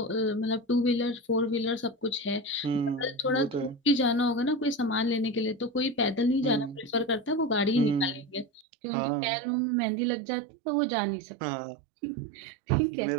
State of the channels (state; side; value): drops out; left; at 8.7 s